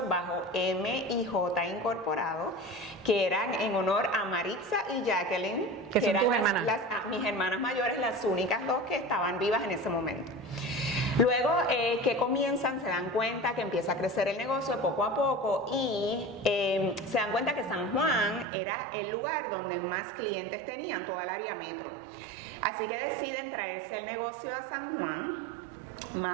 bajo M&J Incorporado, que eran en honor a Maritza y Jacqueline, que son eran tus hermanas. mis hermanas mayores, las únicas 2 que estaban vivas en ese momento. Luego que comienzan, se dan cuenta que empieza a crecer el negocio poco a poco y se dan cuenta que San Juan era el lugar donde más clientes tenían, toda el área metro. Así que deciden traerse el negocio a San Juan,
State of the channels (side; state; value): left; drops out; at 18.4 s